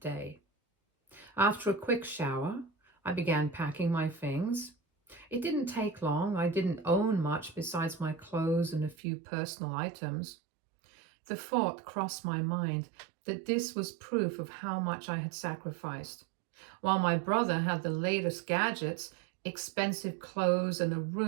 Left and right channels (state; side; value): drops out; left; at 9.0 s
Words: day. After a quick shower, I began packing my things. It didn't take long. I didn't own much besides my clothes and a few personal items. The thought crossed my mind that this was proof of how much I had sacrificed. While my brother had the latest gadgets, expensive clothes, and a